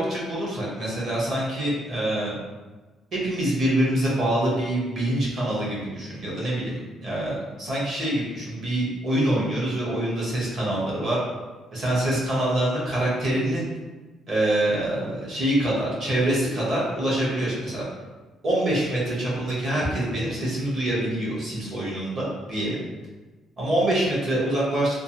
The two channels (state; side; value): normal; both; correlation 0.74